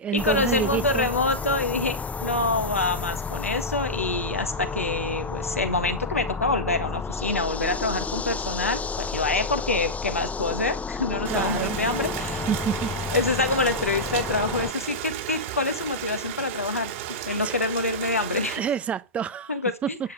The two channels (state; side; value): normal; both; correlation -0.09